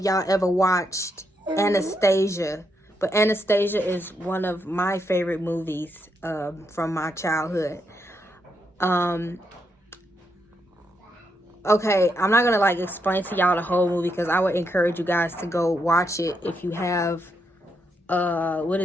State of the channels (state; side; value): normal; both; correlation 0.80